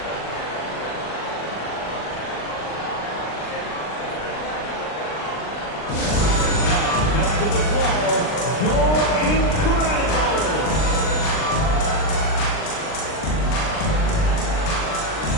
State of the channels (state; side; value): late; right; 39 ms